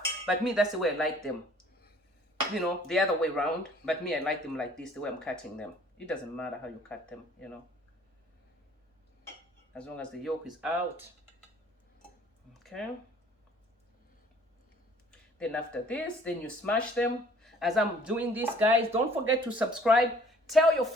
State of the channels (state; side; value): normal; both; correlation 0.55